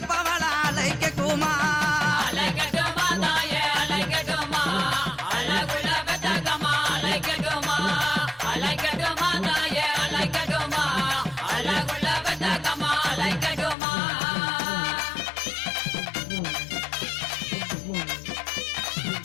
அலைக்கட்டுமா அலைக்கட்டுமா தாய அலைக்கட்டுமா அழகுள்ள பெத்தாக்கம்மா அலைக்கட்டுமா அலைக்கட்டுமா தாய அலைக்கட்டுமா அழகுள்ள பெத்தாக்கம்மா அலைக்கட்டுமா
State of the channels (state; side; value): drops out; right; at 13.8 s